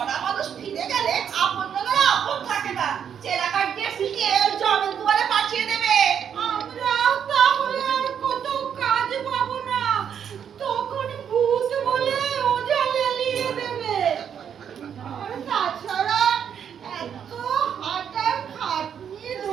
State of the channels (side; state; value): left; quieter; 8.2 dB